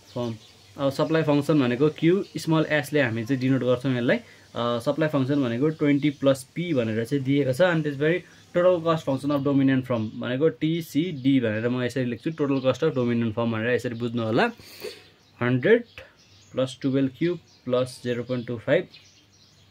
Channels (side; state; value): both; identical; correlation 1.00